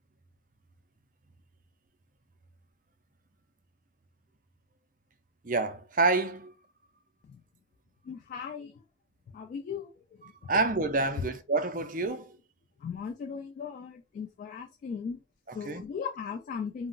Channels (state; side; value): normal; both; correlation -0.14